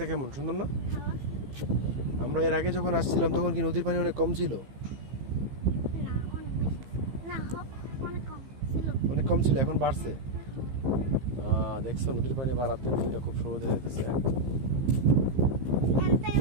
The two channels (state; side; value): late; left; 15 ms